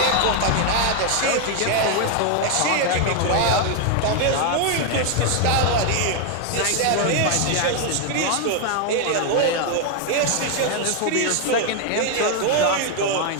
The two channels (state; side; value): different; both; correlation 0.00